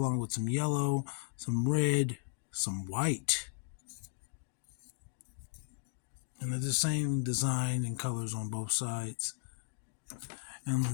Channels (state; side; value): silent; right; digital silence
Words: with some yellow, some red, some white. And they're the same design and colors on both sides.